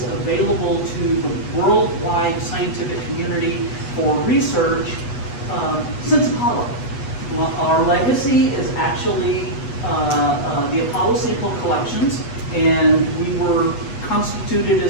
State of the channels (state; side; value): late; right; 8.2 ms